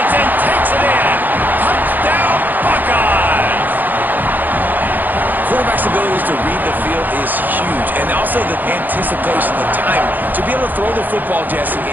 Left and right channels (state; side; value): late; left; 0.086 ms